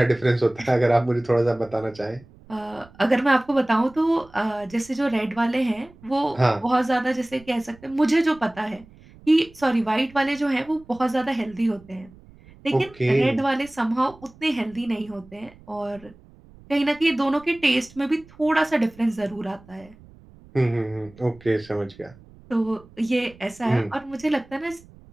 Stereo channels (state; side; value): noise; right; rumble, 24 dB below the sound